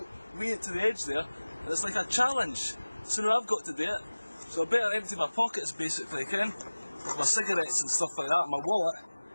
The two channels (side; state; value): both; inverted; correlation -1.00